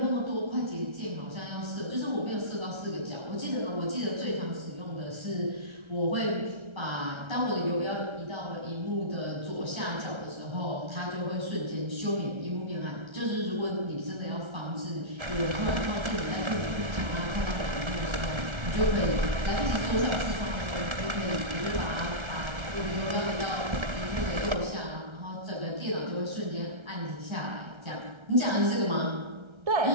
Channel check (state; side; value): late; left; 1.3 ms